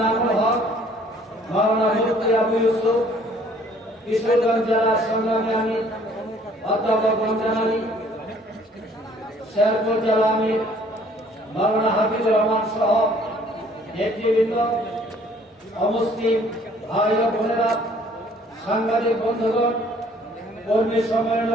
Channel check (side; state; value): both; normal; correlation 0.58